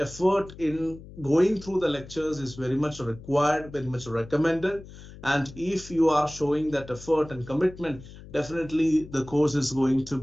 in going through the lectures is very much required, very much recommended. And if you are showing that effort and commitment, definitely the course is going to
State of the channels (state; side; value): noise; left; hum, 17 dB below the sound